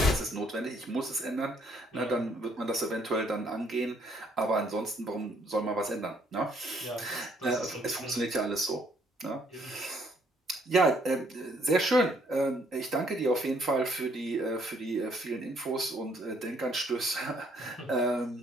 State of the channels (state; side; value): normal; both; correlation 0.67